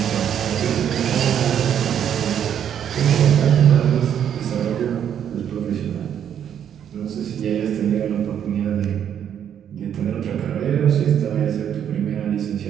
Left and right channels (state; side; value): quieter; left; 9.2 dB